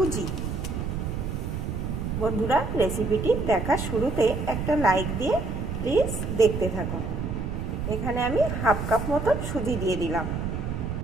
बंधुरा रेसिपिटी देखार शुरूते एक लाइक दिए प्लिज देखते थाकुन। एखाने आमी हाफ कप मतन सुजी दिए दिलाम।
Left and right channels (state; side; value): noise; right; rumble, 3 dB below the sound